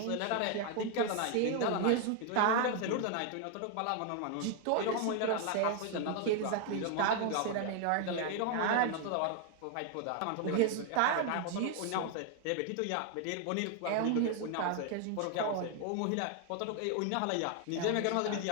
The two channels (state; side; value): different; both; correlation 0.00